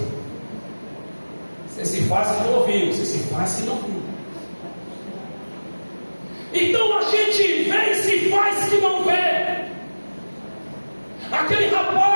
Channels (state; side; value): inverted; both; correlation -1.00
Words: Você se faz que não ouviu. Você se faz que não viu. Então a gente vê e se faz que não vê. Aquele